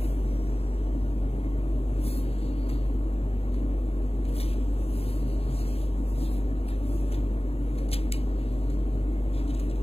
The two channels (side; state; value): right; late; 0.29 ms